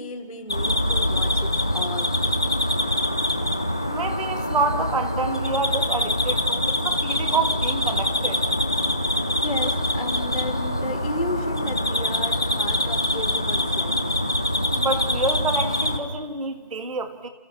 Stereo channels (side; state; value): both; inverted; correlation -0.39